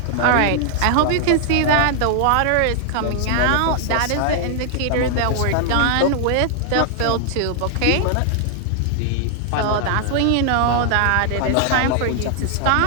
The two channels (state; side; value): different; both; correlation -0.01